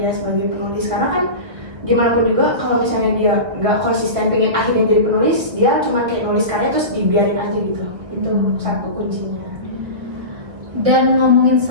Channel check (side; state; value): left; late; 1.3 ms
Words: sebagai penulis. Karena kan gimana pun juga kalau misalnya dia nggak konsisten pengen akhirnya jadi penulis, dia cuma kayak nulis karya terus dibiarin aja gitu. Itu satu kuncinya. Dan ngomongin